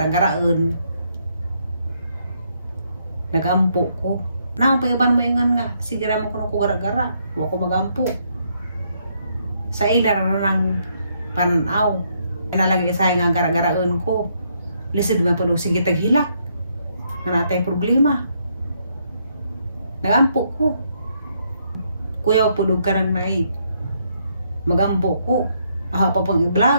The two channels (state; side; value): inverted; both; correlation -0.74